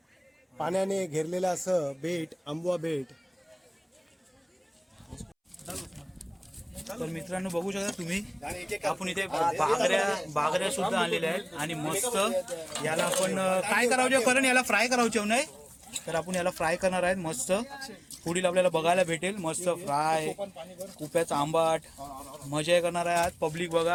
पाण्याने घेरलेलं असं बेट, आंबवा बेट. तर मित्रांनो बघू शकता तुम्ही, आणि एक आपण इथे बागऱ्या सुद्धा आणलेल्या आहेत आणि मस्त याला आपण काय करावं करण, याला फ्राय करावं नाही, तर आपण याला फ्राय करणार आहेत. मस्त पुढील आपल्याला बघायला भेटेल मस्त फ्राय, कुप्याचा आंबाट, मजा करणार आहे आज. पब्लिक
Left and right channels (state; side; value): identical; both; correlation 1.00